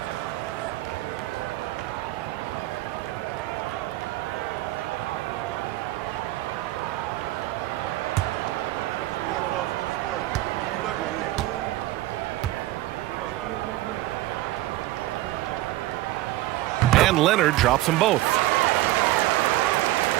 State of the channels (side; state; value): left; quieter; 16.7 dB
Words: And Leonard drops them both.